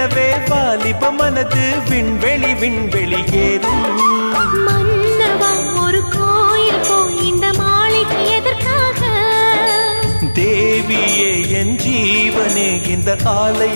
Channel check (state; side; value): inverted; both; correlation -1.00